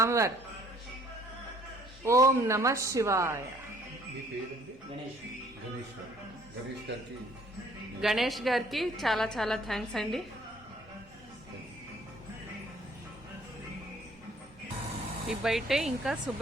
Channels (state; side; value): normal; both; correlation 0.59